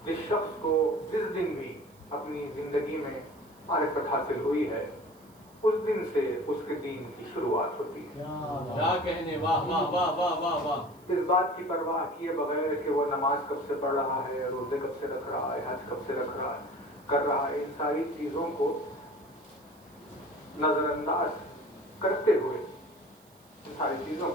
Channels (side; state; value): right; noise; hiss, 28 dB below the sound